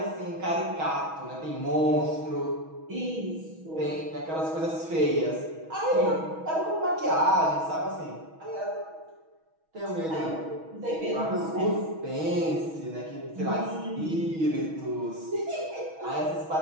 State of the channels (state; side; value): late; left; 6.2 ms